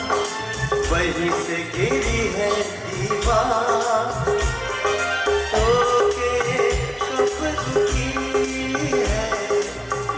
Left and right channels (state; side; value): identical; both; correlation 1.00